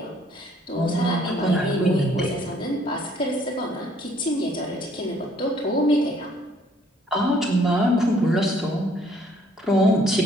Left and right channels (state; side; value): normal; both; correlation 0.62